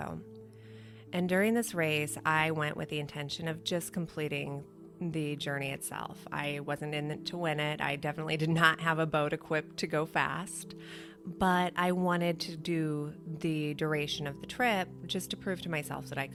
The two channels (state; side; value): identical; both; correlation 1.00